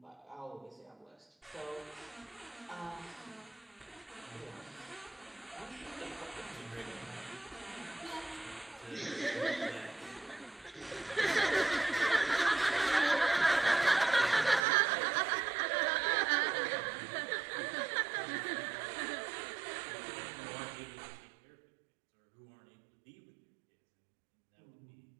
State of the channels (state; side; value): drops out; left; at 14.6 s